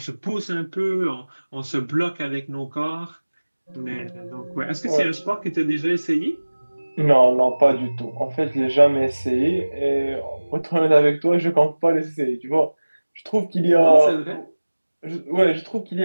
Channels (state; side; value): inverted; both; correlation -1.00